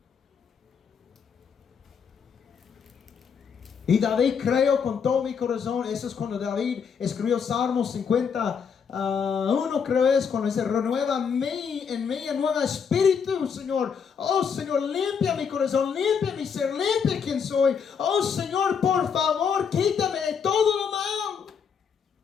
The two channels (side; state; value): right; quieter; 6.6 dB